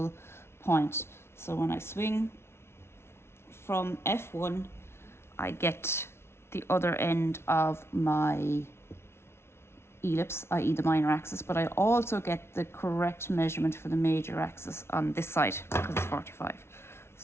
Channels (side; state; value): right; late; 0.12 ms